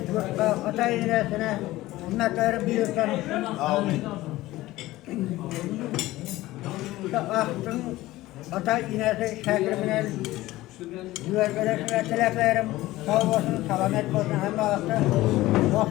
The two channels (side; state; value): right; quieter; 17.3 dB